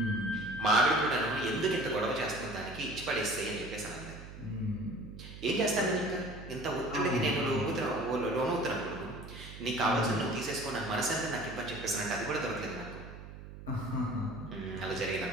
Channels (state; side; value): noise; right; hum, 13 dB below the sound